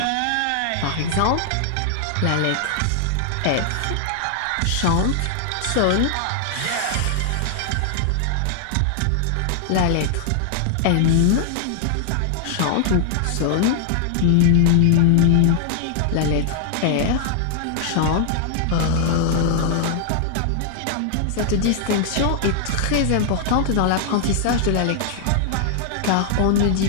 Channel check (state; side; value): different; both; correlation 0.00